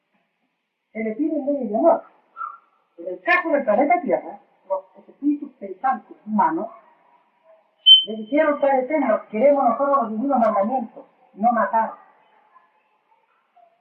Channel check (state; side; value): identical; both; correlation 1.00